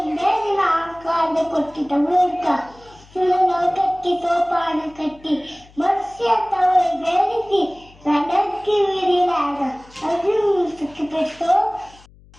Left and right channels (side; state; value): left; noise; hum, 26 dB below the sound